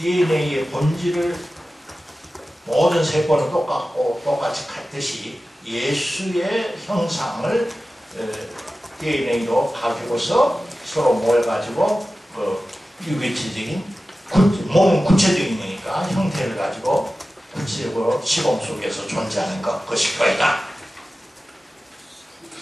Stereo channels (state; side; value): normal; both; correlation 0.95